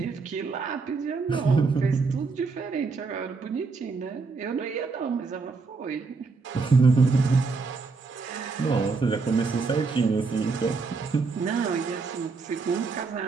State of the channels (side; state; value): left; quieter; 4.4 dB